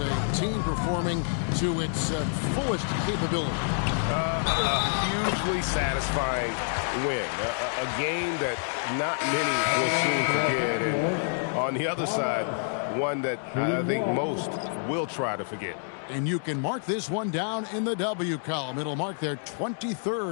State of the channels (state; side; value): silent; right; digital silence